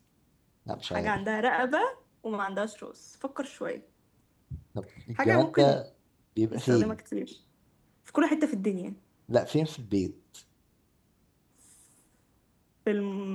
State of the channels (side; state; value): both; identical; correlation 1.00